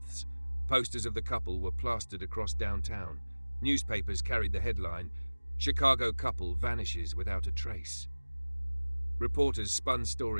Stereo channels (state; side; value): inverted; both; correlation -1.00